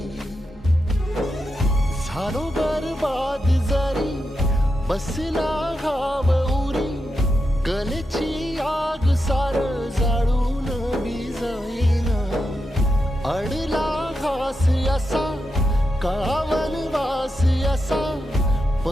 झालो बरबाद जरी बसला घाव उरी, कलेची आग सार जाळून विजाईना. अडला घास असा काळावन वास असा,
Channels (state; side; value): normal; both; correlation 0.87